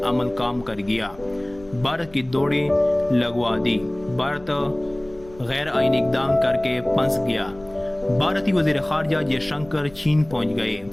अमल काम कर गया। भारत की दौड़ी लगवा दी। भारत गैर आईनी इक़दाम करके फंस गया। भारतीय वज़ीर ख़ारजा जयशंकर चीन पहुंच गए।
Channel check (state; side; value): noise; left; rumble, 22 dB below the sound